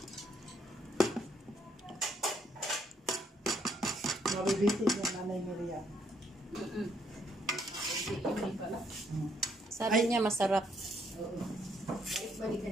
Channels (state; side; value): normal; both; correlation 0.71